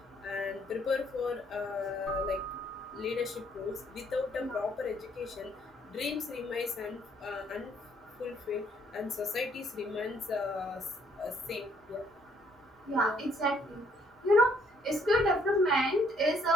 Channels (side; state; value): both; normal; correlation 0.66